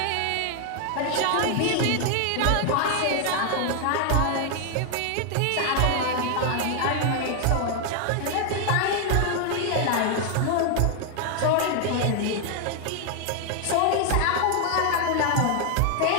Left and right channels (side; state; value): both; different; correlation 0.00